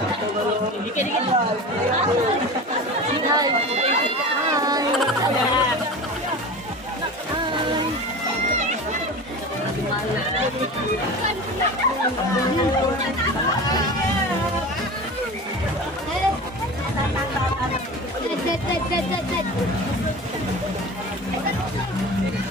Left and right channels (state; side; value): normal; both; correlation 0.32